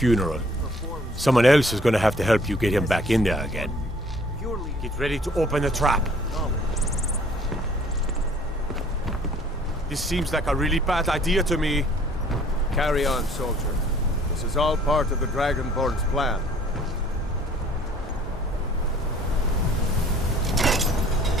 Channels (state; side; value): normal; both; correlation 0.56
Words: Someone else is gonna have to help you get him back in there again. Get ready to open the trap. This seems like a really bad idea to me. Carry on, soldier. This is all part of the Dragonborn's plan.